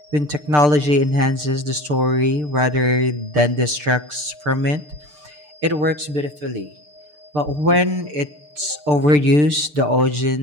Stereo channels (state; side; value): late; left; 6.7 ms